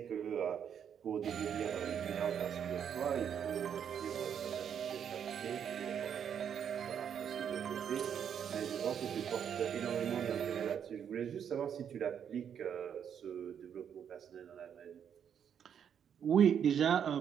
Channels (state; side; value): quieter; left; 8.3 dB